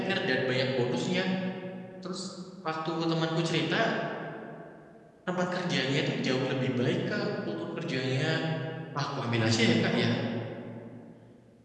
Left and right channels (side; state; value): both; identical; correlation 1.00